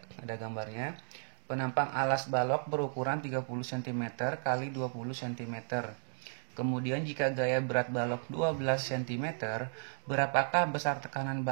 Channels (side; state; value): left; silent; digital silence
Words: gambarnya. Penampang alas balok berukuran 30 cm kali 20 cm. Kemudian jika gaya berat balok 12 cm, berapakah besar tekanan